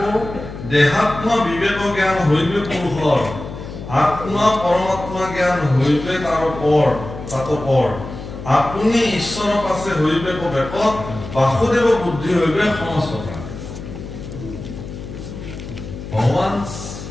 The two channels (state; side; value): noise; left; hum, 11 dB below the sound